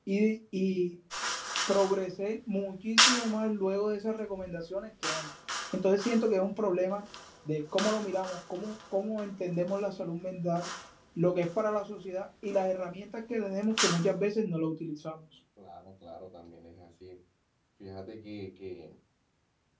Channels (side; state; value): both; identical; correlation 1.00